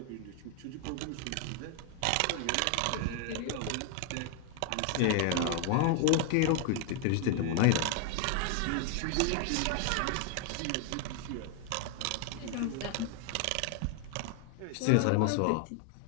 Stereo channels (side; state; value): both; different; correlation 0.00